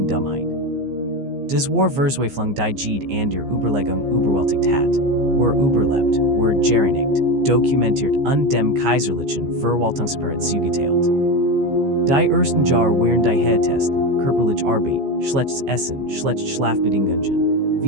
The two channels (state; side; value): late; left; 15 ms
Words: Dummheit. Das war Verzweiflung die Jede an der Überlegung überwältigt hat, war überlebt, war gereinigt, dokumentiert und dem kaiserlichen Verwaltungsapparat zugeteilt. Die ersten Jahr während die Testen, körperlich Arbeit, schlechtes Essen, schlecht Schlafbedingungen,